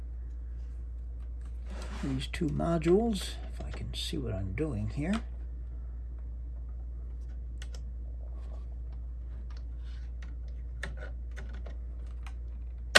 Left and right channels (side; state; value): both; identical; correlation 1.00